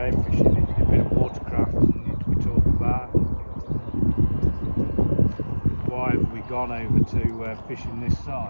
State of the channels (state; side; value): inverted; both; correlation -1.00